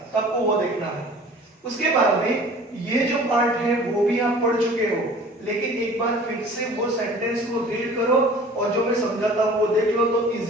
तो आपको वो देखना है। उसके बाद में ये जो पार्ट है वो भी आप पढ़ चुके हो, लेकिन एक बार फिर से वो सेंटेंस को रीड करो और जो मैं समझाता हूँ वो देख लो तो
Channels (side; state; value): both; normal; correlation 0.46